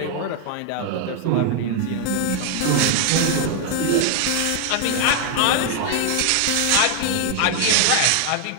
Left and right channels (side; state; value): both; different; correlation 0.00